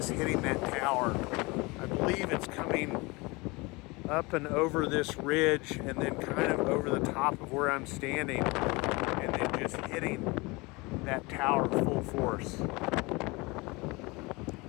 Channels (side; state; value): right; quieter; 25.0 dB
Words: hitting that tower. I believe it's coming up and over this ridge and then kind of over the top of where I'm standing and then just hitting that tower full force.